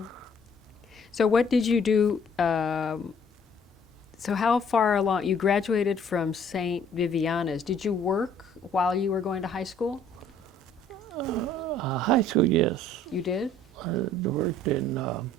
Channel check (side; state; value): both; normal; correlation 0.58